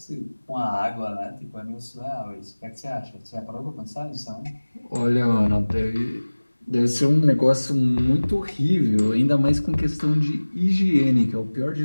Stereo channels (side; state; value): both; inverted; correlation -1.00